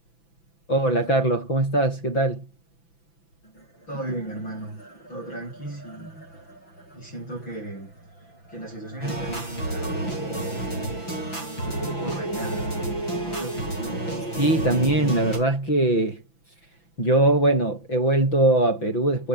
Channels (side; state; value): right; late; 6.0 ms